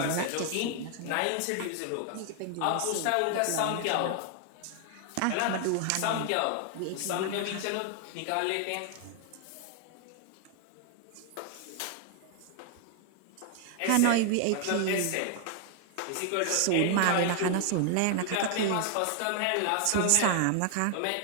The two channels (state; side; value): different; both; correlation 0.00